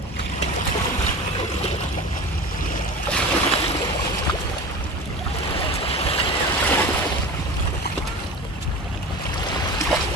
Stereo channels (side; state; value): both; normal; correlation 0.33